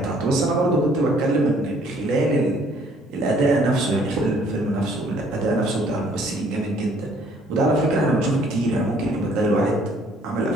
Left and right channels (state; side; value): normal; both; correlation 0.61